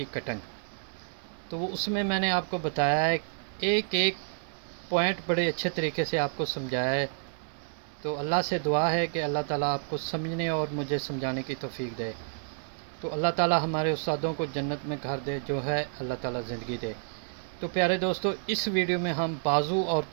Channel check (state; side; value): silent; left; digital silence